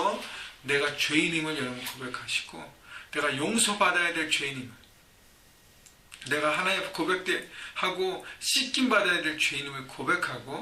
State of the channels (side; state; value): both; identical; correlation 1.00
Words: 내가 죄인임을 여러분 고백하시고 내가 용서받아야 될 죄인임을, 내가 하나님 고백하고 씻김받아야 될 죄인임을